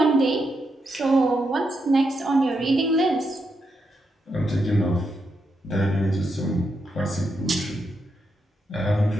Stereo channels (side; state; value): both; normal; correlation 0.82